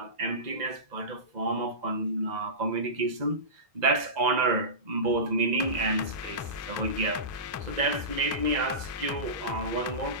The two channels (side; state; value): left; late; 2.0 ms